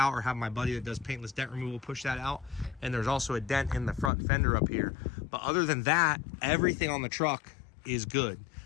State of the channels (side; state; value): right; drops out; at 4.1 s